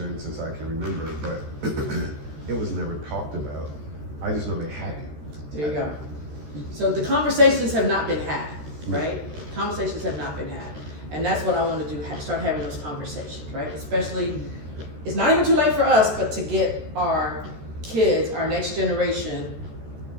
since I can remember, but it was never talked about. I just know they had it. There you go. So the conversations have not been had, right? Conversations have not been had. And that's what I want to do, start having those conversations, right? Especially, it's not even too late for us, but to get our kids, our next generation,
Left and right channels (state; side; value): late; left; 13 ms